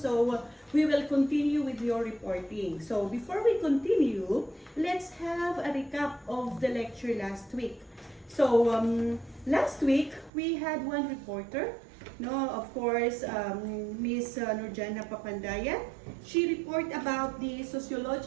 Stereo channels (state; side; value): drops out; left; at 10.3 s